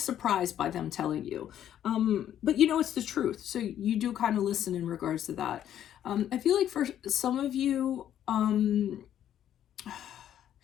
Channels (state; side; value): quieter; right; 10.7 dB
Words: by them telling you. But you know, it's the truth. So you do kind of listen in regards to that. I feel like for some of you,